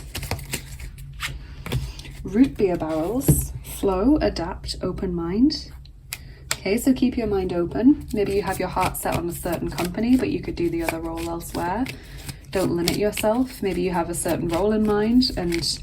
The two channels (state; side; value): identical; both; correlation 1.00